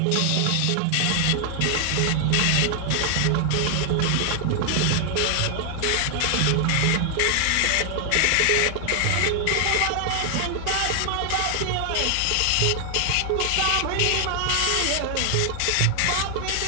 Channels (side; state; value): both; different; correlation 0.00